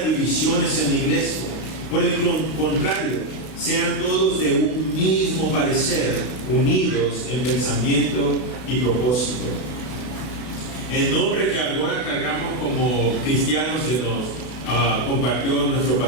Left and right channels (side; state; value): right; late; 33 ms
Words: divisiones en la iglesia. Por el contrario, sean todos de un mismo parecer, unidos en pensamiento y propósito. El nombre que ahora cargamos como cristianos que nos compartió nuestro